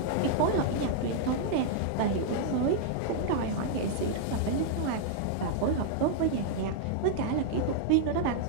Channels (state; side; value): different; both; correlation -0.01